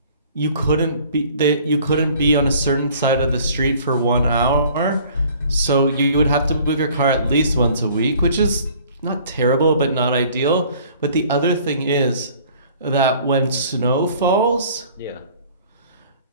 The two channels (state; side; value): inverted; both; correlation -0.53